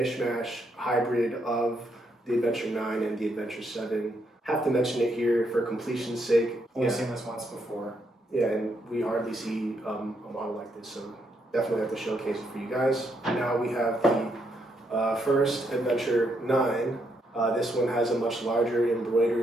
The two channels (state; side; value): normal; both; correlation 0.77